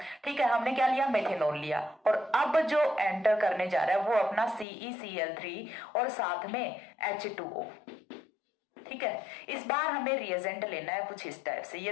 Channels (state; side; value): drops out; right; at 4.7 s